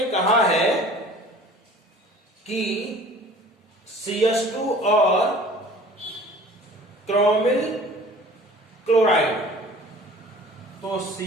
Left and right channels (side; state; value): both; normal; correlation 0.47